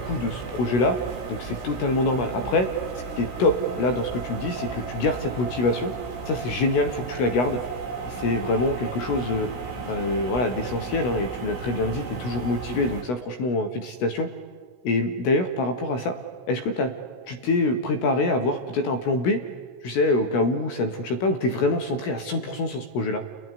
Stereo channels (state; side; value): late; right; 16 ms